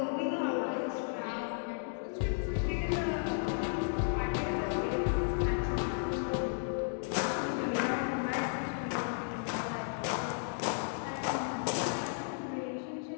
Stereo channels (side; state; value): right; silent; digital silence